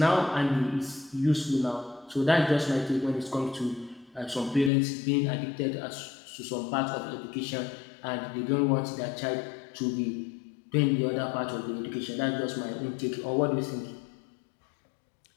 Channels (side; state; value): right; drops out; at 4.7 s